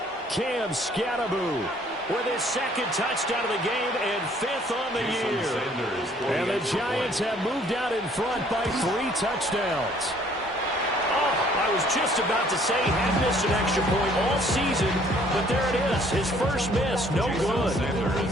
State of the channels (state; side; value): normal; both; correlation 0.60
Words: Cam Scannaboo with his 2nd touchdown of the game and 5th on the year. And the Giants have moved out in front by 3 touchdowns. I was just about to say he had missed an extra point all season, but there it is. His first miss, no good.